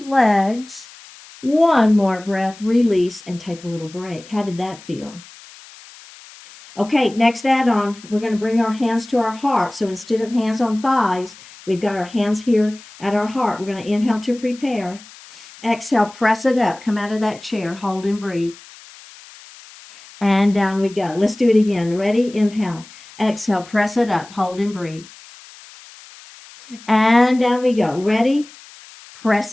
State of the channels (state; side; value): noise; left; hiss, 21 dB below the sound